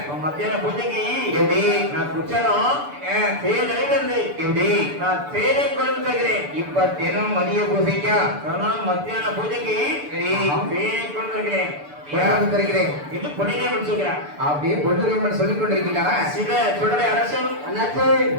மத்தியான பூஜைக்கு எப்படி நான் குச்சாலும் தேர்தலிருந்து எப்படி நான் தேரை கொண்டு தருகிறேன் இப்ப தினம் மதிய பூஜைக்கா மத்தியான பூஜைக்கு தேரை கொண்டு தருகிறேன் தருகிறேன் இது பொன்னிலே முடிச்சுக்கிறார் அப்படியே பொன்னிலே சொல்லிக் கொண்டிருக்கிறாரா சில சுடலை அரசன் அண்ணாச்சே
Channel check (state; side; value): late; left; 6.9 ms